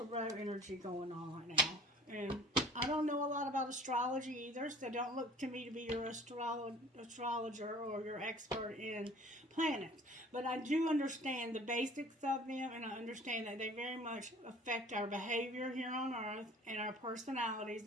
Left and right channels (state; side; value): normal; both; correlation 0.49